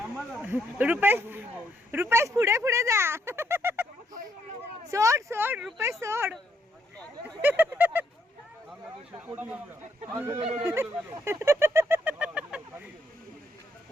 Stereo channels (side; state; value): both; normal; correlation 0.74